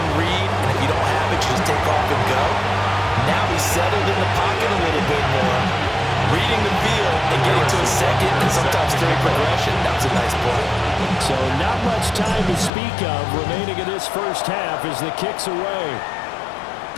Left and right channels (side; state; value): right; drops out; at 12.7 s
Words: read, and if you don't have it, you just take off and go. Now he's settled in the pocket a little bit more, reading the field and getting to a second and sometimes third progression. That was a nice play. So not much time to speak of remaining in this first half as the kick's away.